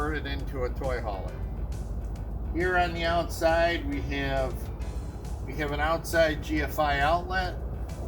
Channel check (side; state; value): both; identical; correlation 1.00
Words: into a toy hauler. Here on the outside we have an outside GFI outlet.